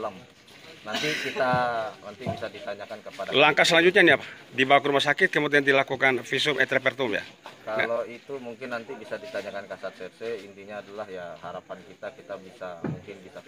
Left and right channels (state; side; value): identical; both; correlation 1.00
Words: Nanti bisa ditanyakan kepada. Langkah selanjutnya ini apa? Dibawa ke rumah sakit kemudian dilakukan visum et repertum ya? Kalau itu mungkin nanti bisa ditanyakan Kasat Serse. Intinya adalah ya harapan kita mungkin bisa